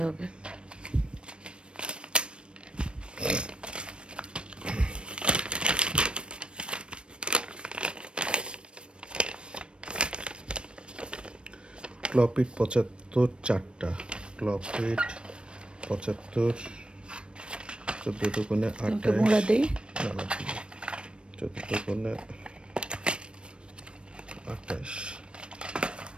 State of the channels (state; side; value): late; left; 0.056 ms